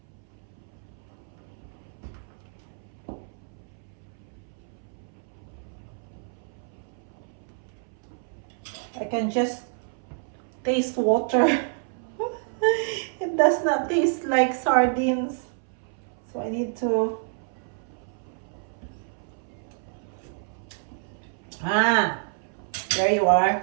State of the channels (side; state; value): left; silent; 59 dB below the other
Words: I can just taste water. It does not taste like sardines. So I need to... there you are.